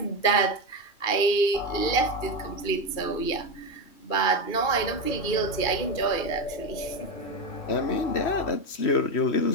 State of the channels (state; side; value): late; right; 2.4 ms